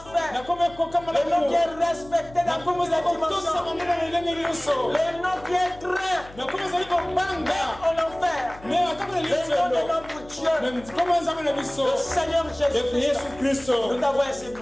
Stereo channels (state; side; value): noise; left; hum, 20 dB below the sound